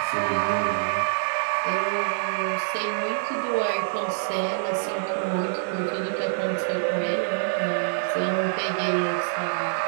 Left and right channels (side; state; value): left; silent; digital silence